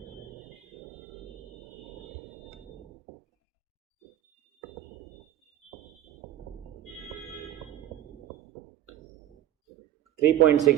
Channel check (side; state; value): left; quieter; 12.4 dB